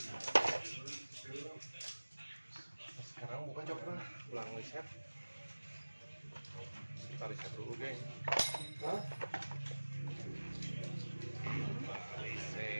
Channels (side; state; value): both; inverted; correlation -1.00